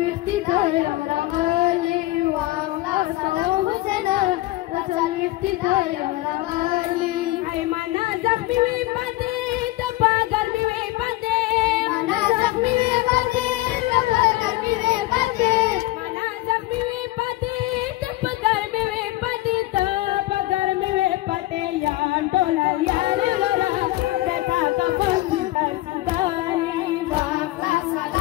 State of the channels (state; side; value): quieter; right; 18.5 dB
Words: تايو رغالي واخلا سلام حسنا تسلويختي تايو رغالي هاي منا زخمي وي پدې تپاګر می وي پدې منا زخمي وي پدې تپاګر می وي پدې منا زخمي وي پدې تپاګر می وي پدې تپاګر می وي پدې یا ټول یار رورا دتا کا فنس کار سیدالي واخلا